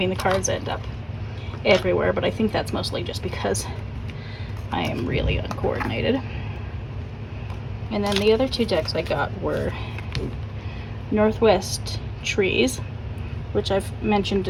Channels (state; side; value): identical; both; correlation 1.00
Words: the cards end up everywhere, but I think that's mostly just because I am really uncoordinated. And then the other two decks I got were Northwest Trees, which I've mentioned